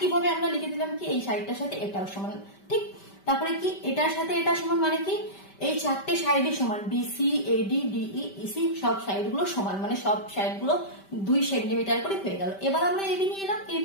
আমরা লিখে দিলাম কি এই সাইডটার সাথে এটাও সমান, ঠিক। তারপরে কি এটার সাথে এটা সমান, মানে কি এই চারটে সাইডই সমান, বিসি এডি ডিই ইসি সব সাইড গুলো সমান, মানে সব সাইড গুলো 2 সেন্টিমিটার করে হয়ে গেল। এবার আমরা এবি নিয়ে এলাম,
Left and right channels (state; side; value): late; right; 5.1 ms